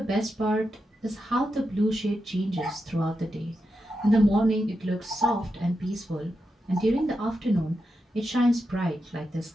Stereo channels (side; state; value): both; normal; correlation 0.87